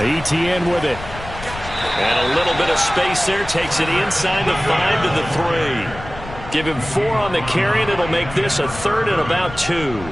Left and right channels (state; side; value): noise; left; rumble, 13 dB below the sound